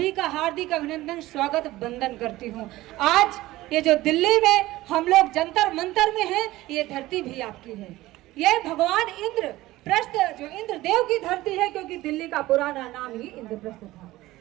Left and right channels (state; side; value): quieter; left; 17.4 dB